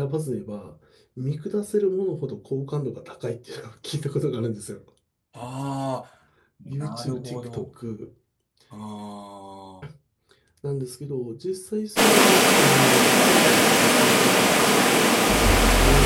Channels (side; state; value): both; identical; correlation 1.00